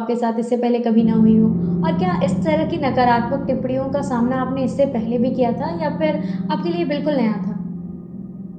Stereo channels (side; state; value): both; identical; correlation 1.00